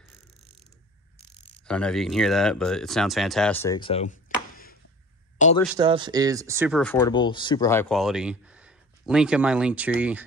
I don't know if you can hear that, but it sounds fantastic. So all their stuff is super affordable, super high quality. Link in my link tree.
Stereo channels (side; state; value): both; normal; correlation 0.42